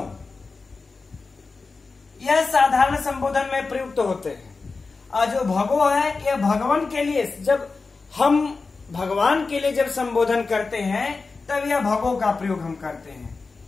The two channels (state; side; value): quieter; right; 4.1 dB